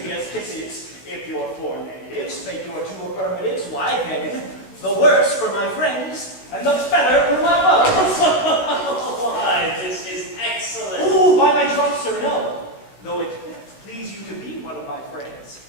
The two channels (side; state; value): right; late; 16 ms